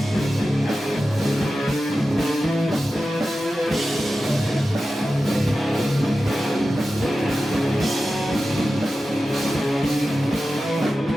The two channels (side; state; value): both; normal; correlation 0.93